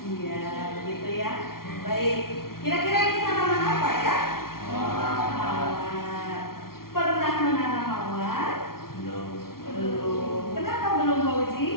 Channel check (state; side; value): late; right; 0.93 ms